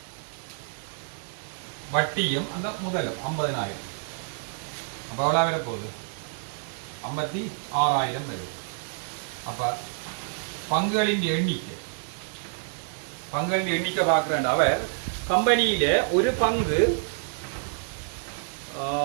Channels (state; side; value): silent; left; digital silence